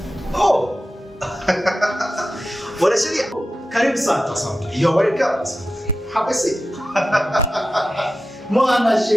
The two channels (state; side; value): normal; both; correlation 0.92